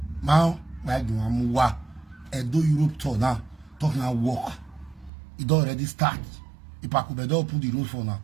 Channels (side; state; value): left; drops out; at 5.1 s